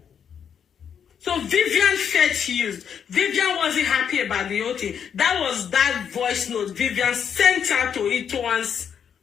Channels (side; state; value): right; quieter; 7.9 dB